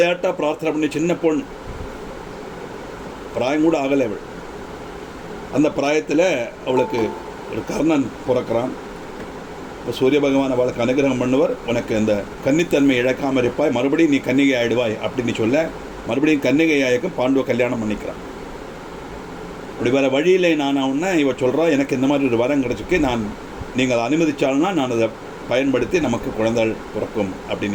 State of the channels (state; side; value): identical; both; correlation 1.00